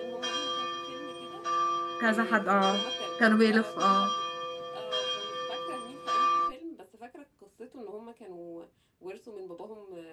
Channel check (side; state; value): both; identical; correlation 1.00